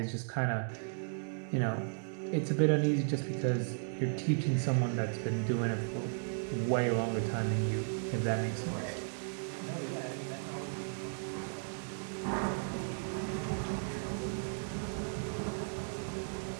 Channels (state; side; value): silent; left; digital silence